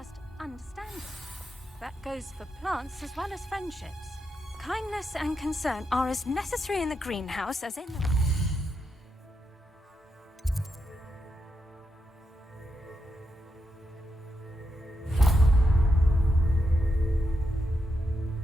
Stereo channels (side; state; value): both; normal; correlation 0.84